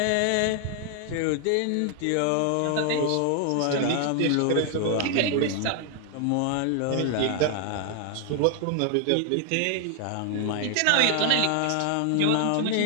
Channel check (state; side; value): different; both; correlation 0.00